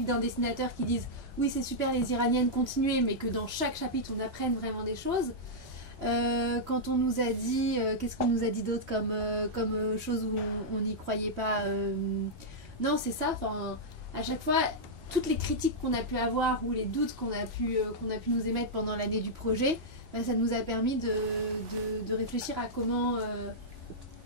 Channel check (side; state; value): both; normal; correlation -0.08